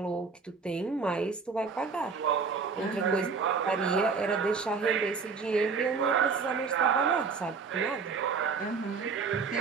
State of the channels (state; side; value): quieter; left; 5.1 dB